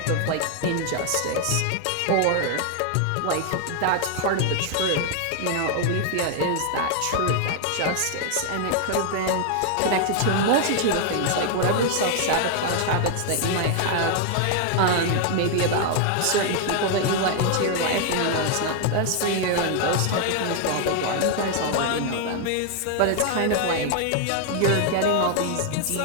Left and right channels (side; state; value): both; different; correlation 0.00